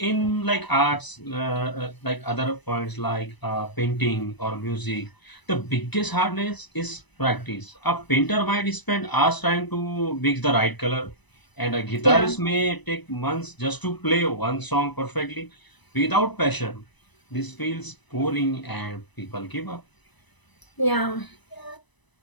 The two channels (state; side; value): late; right; 1.0 ms